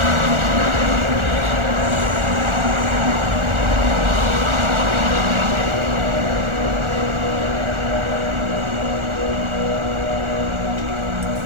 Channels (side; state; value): left; late; 1.4 ms